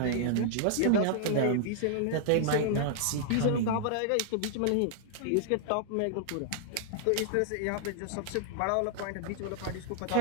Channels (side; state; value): both; different; correlation -0.01